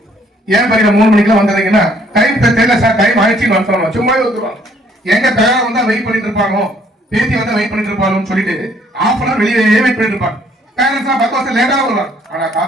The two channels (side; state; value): both; normal; correlation 0.63